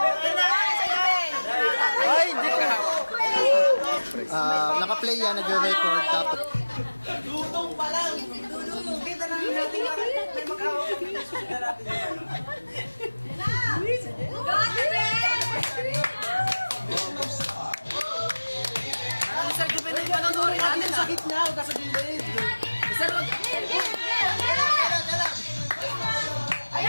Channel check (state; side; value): inverted; both; correlation -1.00